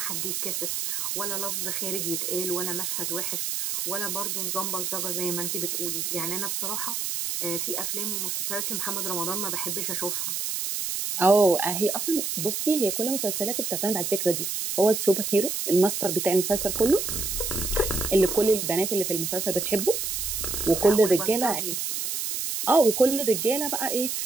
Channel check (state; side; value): noise; right; hiss, 2 dB below the sound